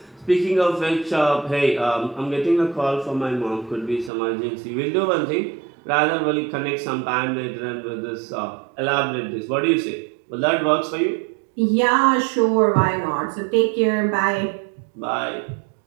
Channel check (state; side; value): drops out; left; at 4.1 s